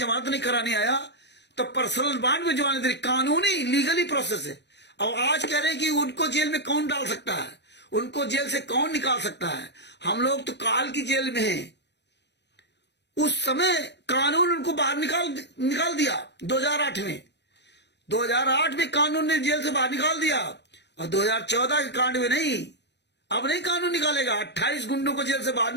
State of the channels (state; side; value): late; right; 0.50 ms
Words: नहीं कराने आया तो पर्सनल बॉन्ड में जमानत दे, कानूनी लीगली प्रोसेस है। और आज कह रहे हैं कि उनको जेल में कौन डाल सकता है, उनको जेल से कौन निकाल सकता है। हम लोग तो काल की जेल में हैं। उस समय कानून उनको बाहर निकाल दिया 2008 में। 2008 में कानून ने जेल से बाहर निकाल दिया और 2014 के कांड में नहीं, अब नहीं कानून निकालेगा। 28 गुंडों को जेल से बाहर